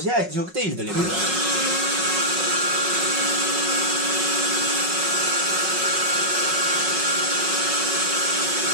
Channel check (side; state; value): left; late; 5.5 ms